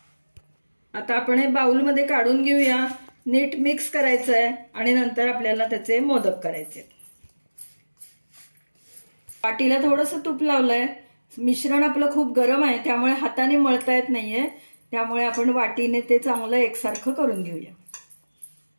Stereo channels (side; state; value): both; inverted; correlation -1.00